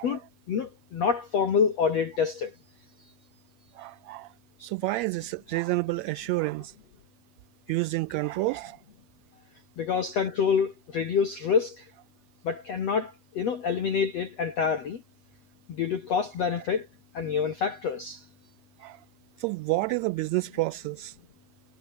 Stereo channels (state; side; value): late; right; 8.4 ms